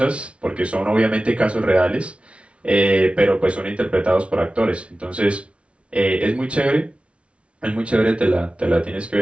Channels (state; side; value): late; left; 0.061 ms